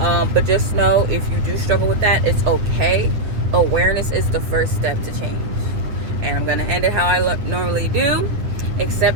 just know, if you do struggle with that, it's okay. Awareness is the first step to change. And I'm gonna end it how I normally do.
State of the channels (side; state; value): left; late; 8.9 ms